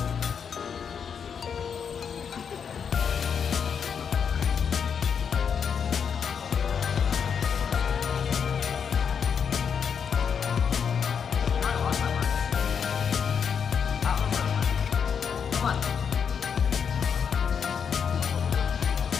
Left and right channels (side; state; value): right; quieter; 7.0 dB